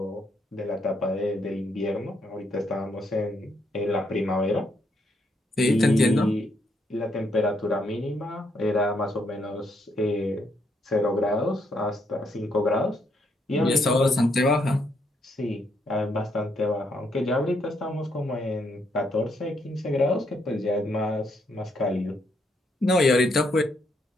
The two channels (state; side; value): normal; both; correlation 0.75